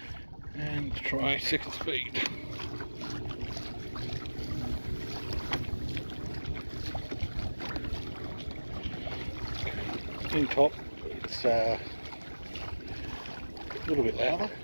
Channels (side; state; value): both; inverted; correlation -1.00